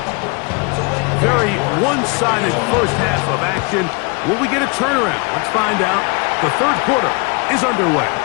Very one-sided first half of action. Will we get a turnaround? Let's find out. The third quarter is underway.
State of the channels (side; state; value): right; quieter; 30.5 dB